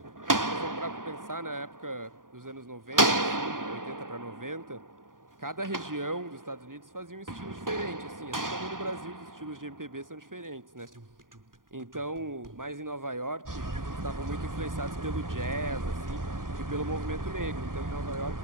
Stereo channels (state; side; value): late; left; 0.90 ms